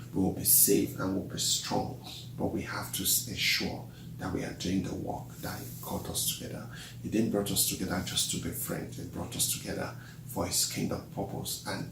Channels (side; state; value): both; identical; correlation 1.00